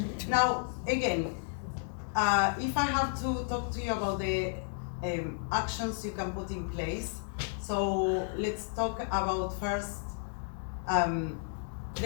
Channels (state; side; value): silent; right; 56 dB below the other